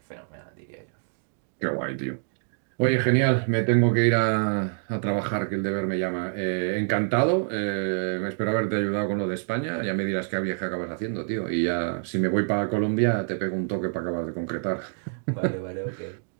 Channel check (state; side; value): silent; left; digital silence